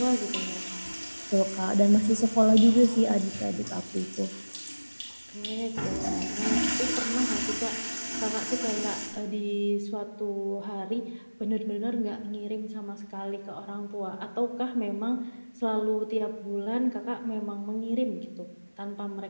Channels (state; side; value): inverted; both; correlation -1.00